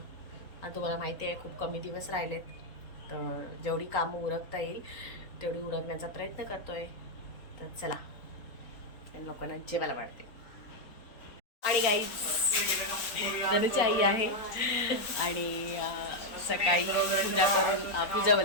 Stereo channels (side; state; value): right; late; 3.9 ms